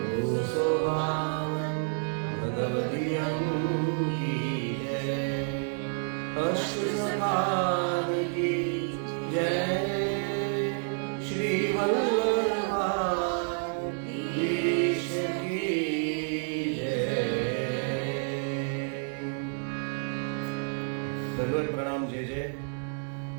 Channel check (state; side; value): silent; left; 58 dB below the other